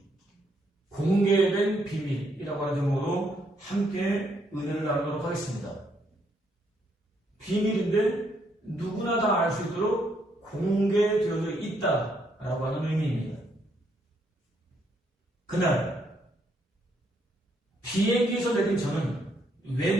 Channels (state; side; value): normal; both; correlation 0.73